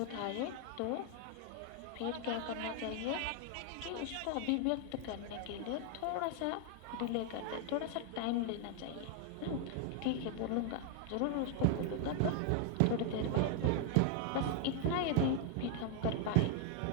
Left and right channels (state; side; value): different; both; correlation 0.00